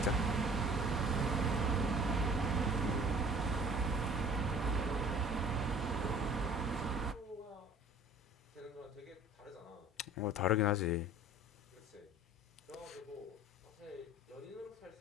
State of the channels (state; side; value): normal; both; correlation 0.49